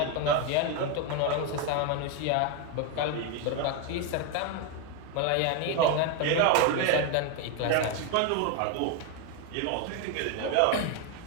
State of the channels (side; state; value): both; different; correlation 0.01